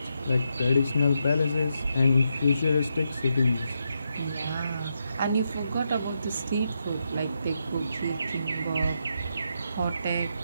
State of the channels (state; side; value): inverted; both; correlation -0.83